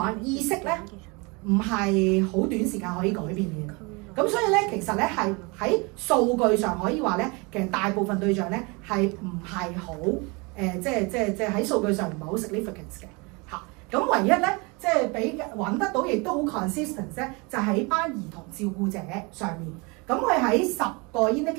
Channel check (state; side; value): quieter; left; 28.3 dB